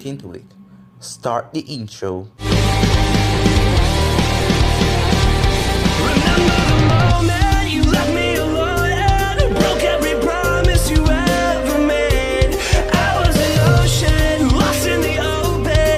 into it. Start the intro. Remember the moment you left me alone and broke every promise you ever made. I was an ocean, lost in the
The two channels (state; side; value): identical; both; correlation 1.00